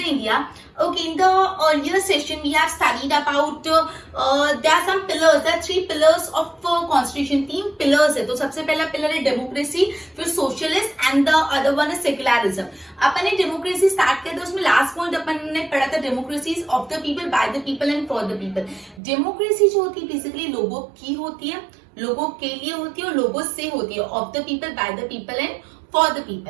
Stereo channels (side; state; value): left; drops out; at 19.0 s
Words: India. Okay, in the earlier session we have studied about there are some pillars, there are three pillars of constitution. तीन pillars है. तो सबसे पहला pillar है democracy, फिर socialist and the other one is secularism. अपन ने democracy start किया था, उसमें last point अपन ने पढ़ा था democracy is of the people, by the people and for the people. Democracy जो होती है basically लोगों की होती है, लोगों के लिए होती है और लोगों से होती है. Of the people, by the people and for the